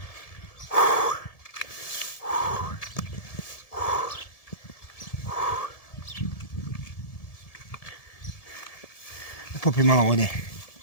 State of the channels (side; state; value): right; late; 1.7 ms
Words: Popim malo vode.